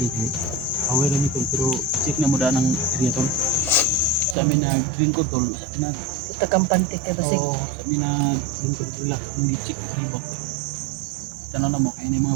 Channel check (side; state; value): left; drops out; at 4.4 s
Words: kay. Away lang ito pero check na mo da ng area tol. Sa amin na green code tol, sa amin na Puta kampante kay basig. sa amin na green code relax mong gi-check ribot. Tanaw na mo kay ni mga